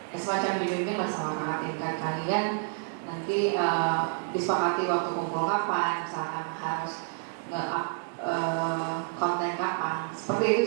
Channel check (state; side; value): silent; left; 59 dB below the other